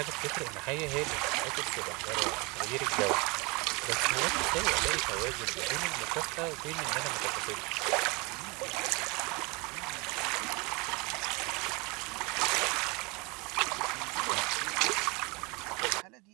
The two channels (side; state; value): left; quieter; 27.7 dB